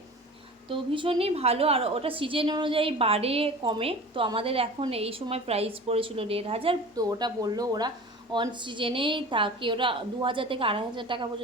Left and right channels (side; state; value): both; normal; correlation 0.38